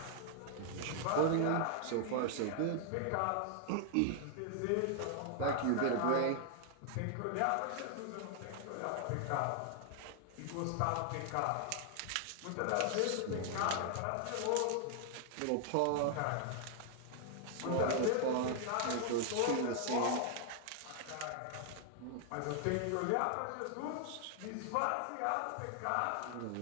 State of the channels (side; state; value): both; different; correlation 0.00